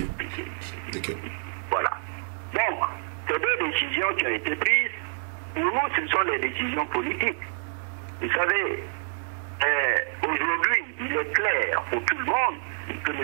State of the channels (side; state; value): left; silent; digital silence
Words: Voilà. Donc, ces 2 décisions qui ont été prises, pour nous, ce sont des décisions politiques. Vous savez, aujourd'hui, il est clair pour tout le monde que